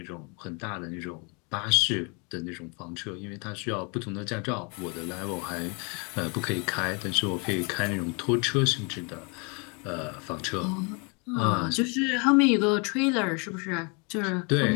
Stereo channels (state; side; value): quieter; right; 33.0 dB